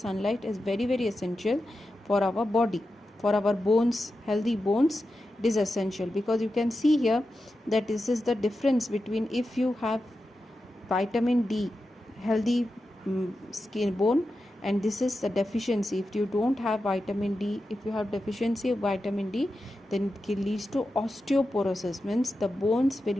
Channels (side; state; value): both; normal; correlation 0.90